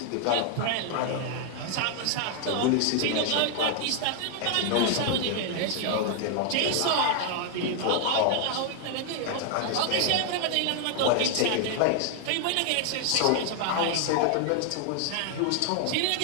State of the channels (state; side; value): different; both; correlation 0.00